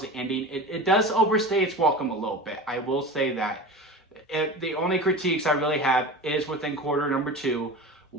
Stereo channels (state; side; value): normal; both; correlation 0.32